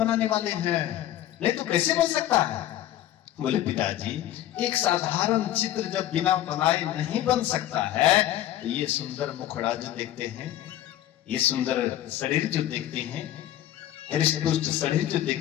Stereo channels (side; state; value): right; quieter; 13.0 dB